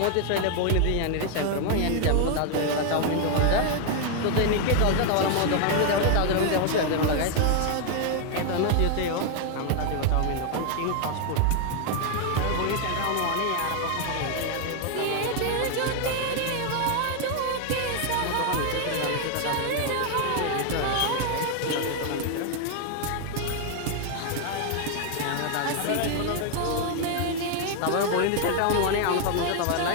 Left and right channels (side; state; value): both; different; correlation 0.00